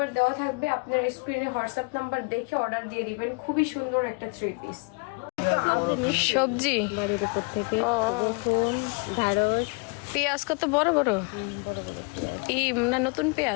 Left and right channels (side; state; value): right; quieter; 32.4 dB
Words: দেওয়া থাকবে, আপনার স্ক্রিনে হোয়াটসঅ্যাপ নাম্বার দেখে অর্ডার দিয়ে দিবেন। খুবই সুন্দর একটা থ্রি পিস। সবজি বাড়ির উপর থেকে ঢেঁড়স, পেঁয়াজ কত বড় বড়, এই না নতুন